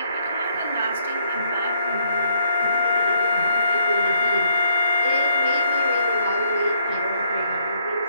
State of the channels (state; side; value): inverted; both; correlation -0.71